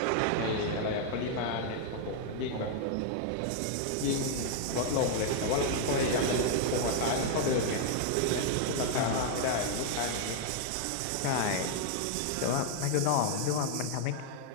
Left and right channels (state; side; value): different; both; correlation 0.00